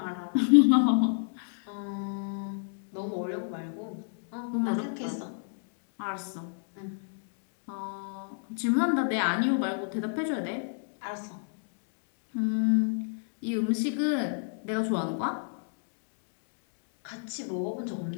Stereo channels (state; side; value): silent; right; digital silence